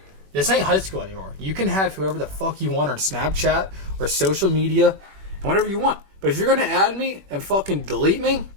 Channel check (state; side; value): late; left; 21 ms